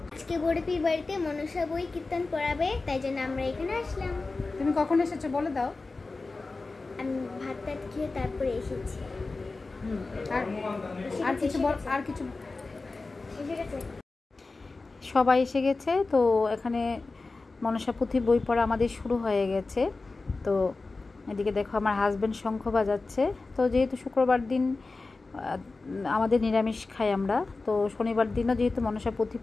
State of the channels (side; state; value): right; quieter; 3.6 dB